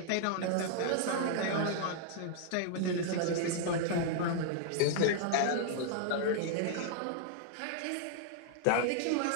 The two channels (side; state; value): both; different; correlation -0.01